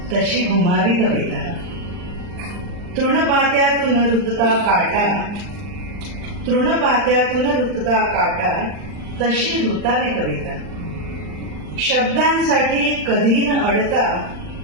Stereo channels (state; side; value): late; left; 39 ms